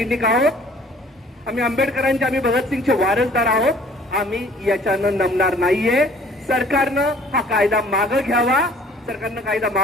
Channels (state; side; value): normal; both; correlation 0.54